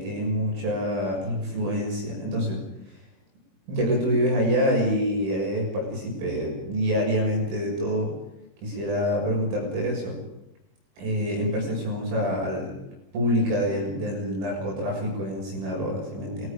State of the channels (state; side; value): late; left; 21 ms